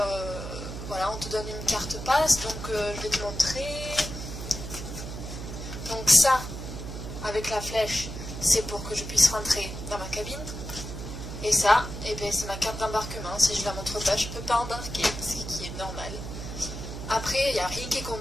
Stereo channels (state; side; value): noise; right; hum, 8 dB below the sound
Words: voilà, on te donne une carte passe. Donc je vais te montrer. Donc ça, avec la flèche, c'est pour que je puisse rentrer dans ma cabine. Et ça, c'est ma carte d'embarquement. Si je la montre pas, je peux pas embarquer, ce qui est normal. Après, il n'y a rien qui est